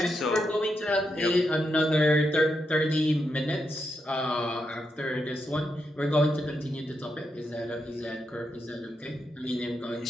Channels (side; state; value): both; normal; correlation 0.83